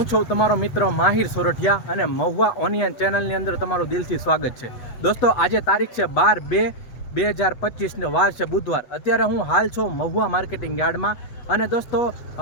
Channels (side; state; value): right; late; 8.2 ms